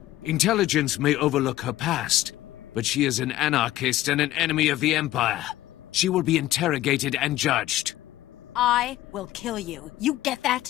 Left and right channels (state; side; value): quieter; right; 15.0 dB